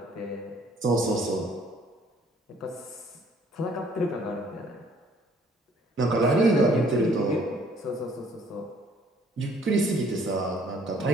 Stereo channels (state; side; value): normal; both; correlation 0.60